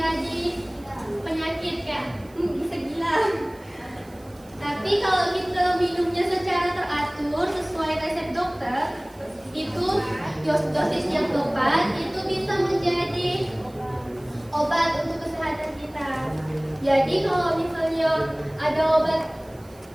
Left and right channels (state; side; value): noise; right; hiss, 27 dB below the sound